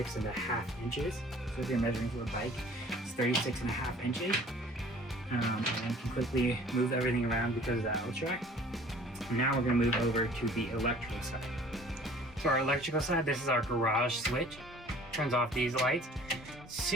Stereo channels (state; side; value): normal; both; correlation 0.50